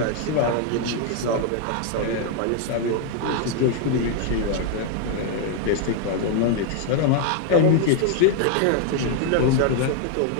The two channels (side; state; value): both; different; correlation 0.00